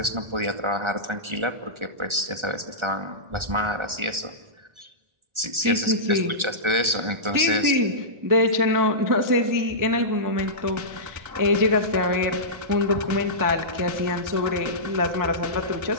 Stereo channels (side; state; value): left; late; 1.4 ms